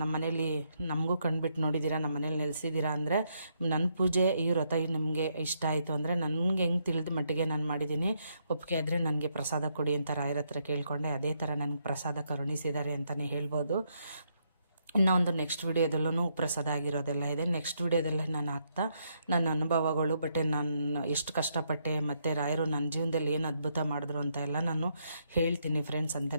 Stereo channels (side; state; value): both; inverted; correlation -0.76